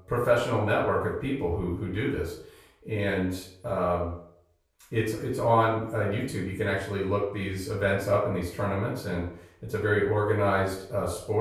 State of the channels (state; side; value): identical; both; correlation 1.00